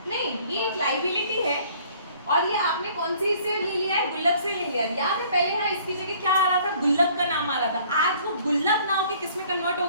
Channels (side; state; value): both; inverted; correlation -0.57